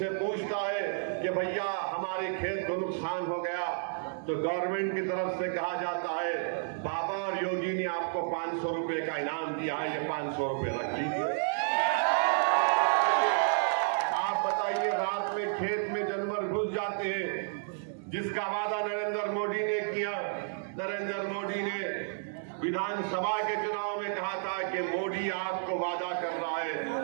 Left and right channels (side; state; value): left; silent; digital silence